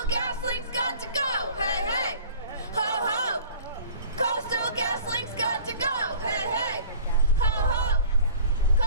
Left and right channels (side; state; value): both; inverted; correlation -0.45